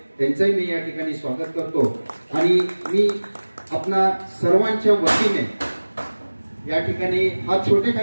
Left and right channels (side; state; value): both; inverted; correlation -1.00